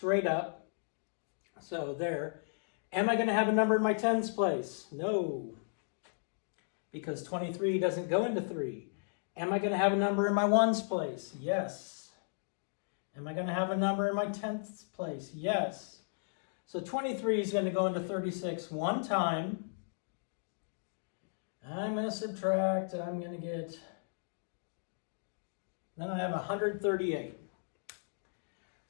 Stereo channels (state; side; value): silent; right; digital silence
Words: up. So there. Am I going to have a number in my tens place? No, because 23 doesn't go into 3. Am I going to have a number in my ones place? Yes. Am I going to have a number in my tenths place? Yes. So 23 is going to go into 36 one time. I'm going to subtract. I'm going to get, then I have 138.